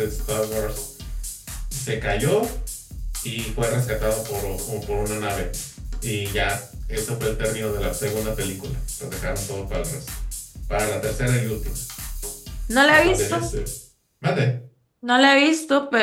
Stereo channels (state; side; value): identical; both; correlation 1.00